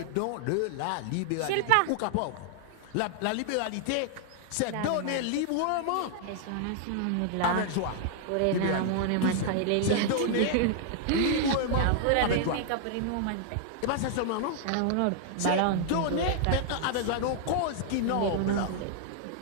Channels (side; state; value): both; different; correlation 0.00